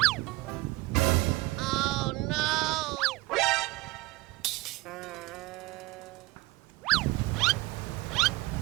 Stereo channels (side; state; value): left; quieter; 20.7 dB